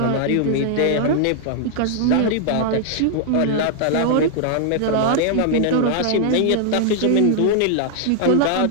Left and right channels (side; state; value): both; different; correlation -0.01